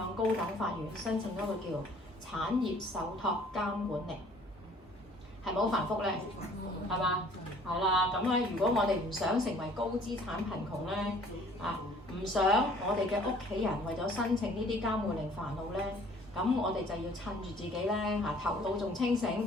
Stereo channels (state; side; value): normal; both; correlation 0.55